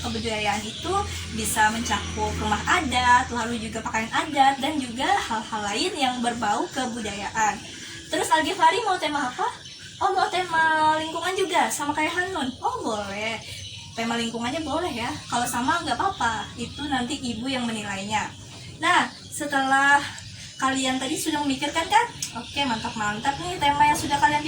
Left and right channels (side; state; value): both; identical; correlation 1.00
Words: itu bisa mencakup rumah adat, lalu juga pakaian adat, dan juga hal-hal lain yang berbau kebudayaan. Terus Al-Ghifari mau tema apa? Oh, mau tema lingkungan juga, sama kayak Hanun. Oh, boleh. Tema lingkungannya boleh ya. Kalau sama nggak apa-apa. Itu nanti Ibu yang menilainya. Nah, setelah kalian tadi sudah memikirkan kan? Oke, mantap-mantap nih tema yang sudah kalian